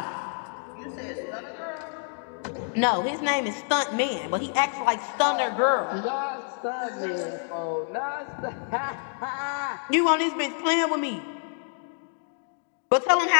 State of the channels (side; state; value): right; silent; 60 dB below the other